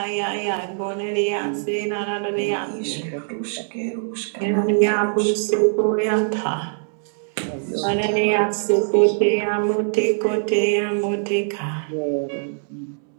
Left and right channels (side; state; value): left; silent; 64 dB below the other